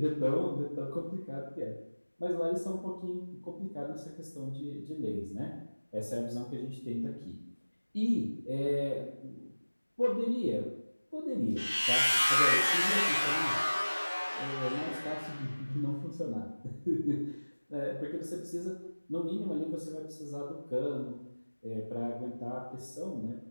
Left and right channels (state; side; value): inverted; both; correlation -1.00